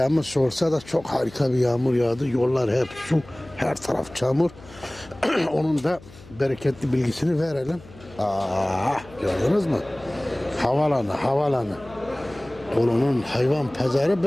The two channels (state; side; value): noise; left; hum, 21 dB below the sound